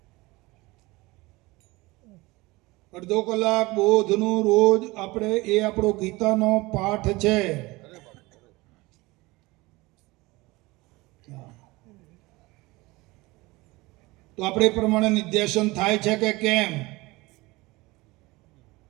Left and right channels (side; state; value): left; quieter; 22.0 dB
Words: અડધો કલાક બોધનું રોજ આપણે, એ આપણો ગીતાનો પાઠ છે. તો આપણે એ પ્રમાણે નિધ્યાસન થાય છે કે કેમ?